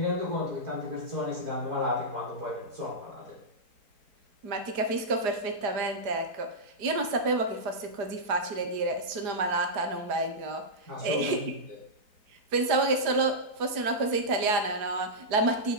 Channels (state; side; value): late; left; 4.9 ms